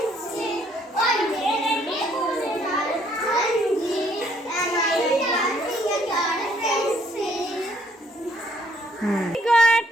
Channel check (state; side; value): normal; both; correlation 0.66